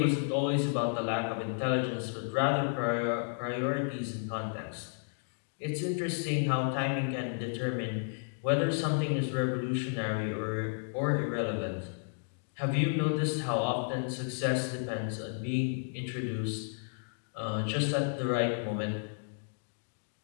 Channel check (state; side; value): silent; right; digital silence